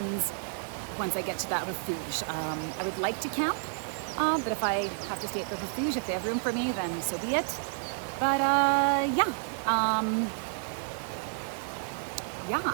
once I get to that refuge. I would like to camp, but if I have to stay at the refuge, if they have room for me, then so be it. But I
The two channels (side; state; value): left; silent; digital silence